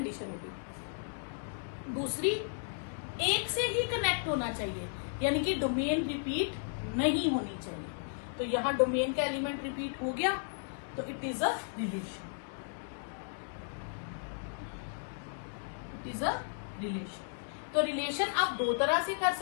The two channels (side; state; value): right; silent; digital silence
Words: होगी। दूसरी, एक से ही कनेक्ट होना चाहिए, यानी कि डोमेन रिपीट नहीं होनी चाहिए। तो यहां डोमेन का एलिमेंट रिपीट हो गया, तो it is a relation, it is a relation. तो रिलेशन आप 2 तरह से कर